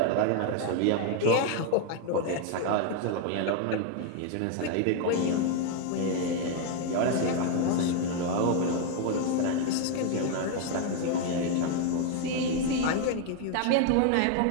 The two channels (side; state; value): both; different; correlation 0.01